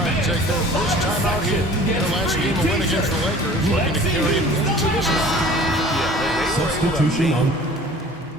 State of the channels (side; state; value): both; normal; correlation 0.47